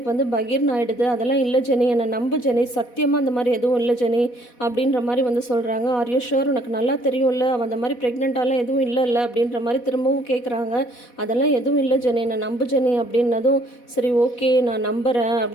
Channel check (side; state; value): right; late; 4.1 ms